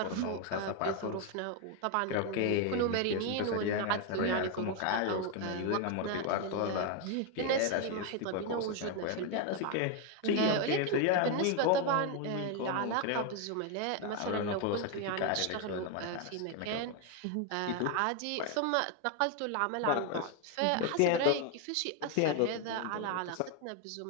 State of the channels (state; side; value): different; both; correlation 0.01